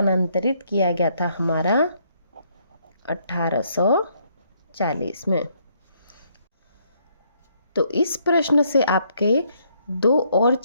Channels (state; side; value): inverted; both; correlation -0.70